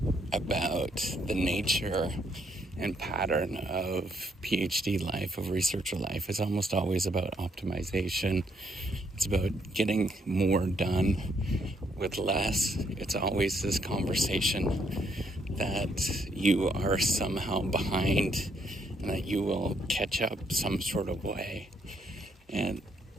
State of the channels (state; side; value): normal; both; correlation 0.72